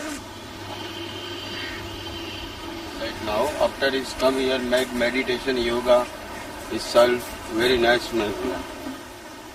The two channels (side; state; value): both; identical; correlation 1.00